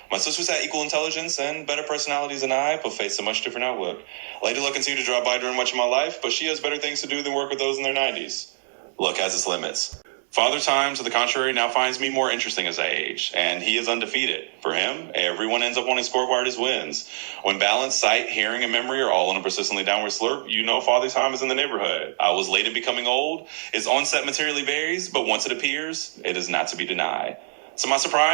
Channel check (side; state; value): left; silent; digital silence